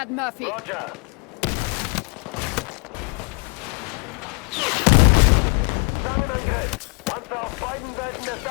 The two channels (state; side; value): quieter; right; 34.5 dB